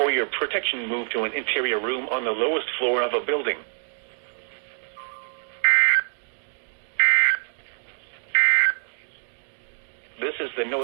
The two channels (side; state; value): left; silent; digital silence